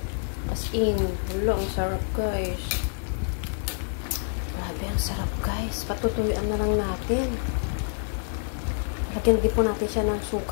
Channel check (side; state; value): right; silent; digital silence